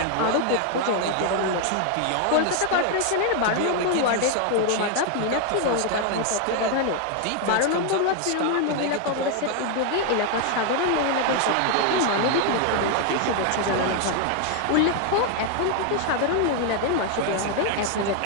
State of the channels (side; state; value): both; different; correlation 0.00